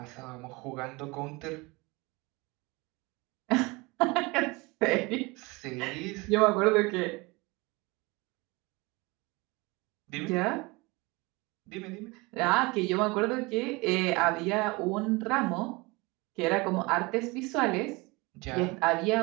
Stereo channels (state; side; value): quieter; left; 25.0 dB